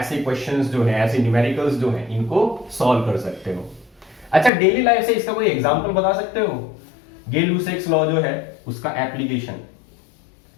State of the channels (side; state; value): right; drops out; at 4.5 s